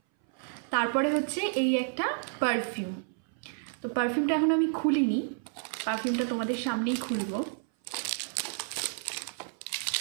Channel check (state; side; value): silent; left; 58 dB below the other